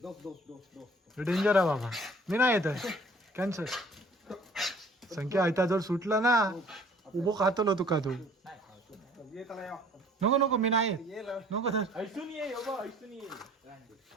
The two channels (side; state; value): both; normal; correlation 0.53